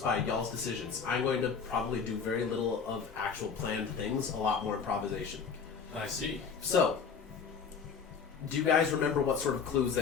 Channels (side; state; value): right; quieter; 6.0 dB